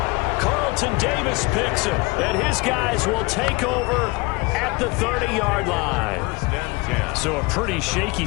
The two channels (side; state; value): right; quieter; 25.5 dB